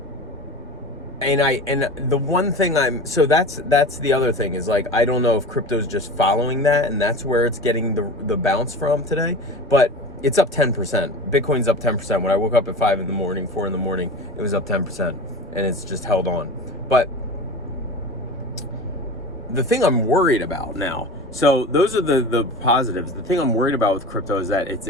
and the one thing so that's the other thing is like, I don't know if crypto's just following that and that's where it's getting the bounce from today, but it's up 10%. Bitcoin's up 10%. When I woke up at 4 in the morning, it was up 10%, and it's just held on. But the thing I'm worried about now, so those are the positives. The thing I'm worried about with crypto is that it's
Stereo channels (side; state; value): both; normal; correlation 0.33